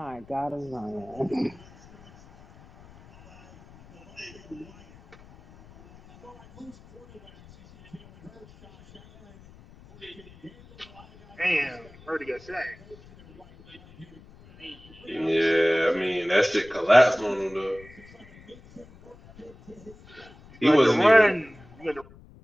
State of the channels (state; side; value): noise; left; rumble, 23 dB below the sound